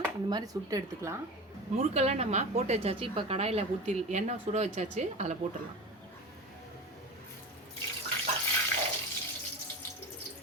இந்த மாதிரி சுட்டு எடுத்துக்கலாம். முறுக்கெல்லாம் நம்ம போட்டு வச்சாச்சு. இப்போ கடாயில் ஊற்றி எண்ணெய் சுட வச்சாச்சு, அதில் போட்டுடலாம்.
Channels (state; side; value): normal; both; correlation 0.29